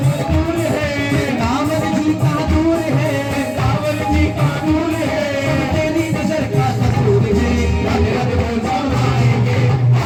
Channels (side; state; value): both; identical; correlation 1.00